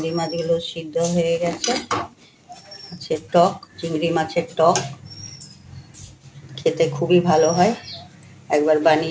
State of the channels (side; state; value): both; identical; correlation 1.00